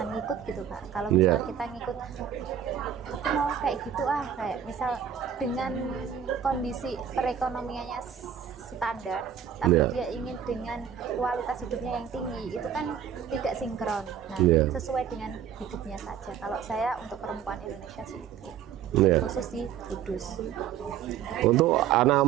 ngikut gitu Pak. Kalau misal kita ngikut, aku mau kayak gitu kayak misal dengan kondisi perekonomiannya standar, tapi dia ingin dengan kualitas hidupnya yang tinggi, itu kan tidak sinkron. Nah, sesuai dengan hidupnya saja. Kalau saya untuk perempuan Indonesia sih itu. Khusus di Kudus. Untuk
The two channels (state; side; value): quieter; left; 8.8 dB